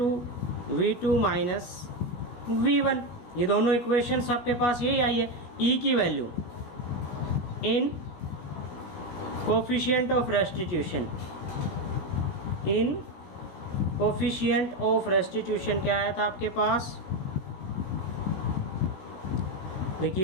v2 minus v1। ये दोनों इक्वेशंस आपके पास यही आई है। e की value in coefficient of restitution, in coefficient of restitution क्या आया था आपके पास,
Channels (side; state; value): right; late; 16 ms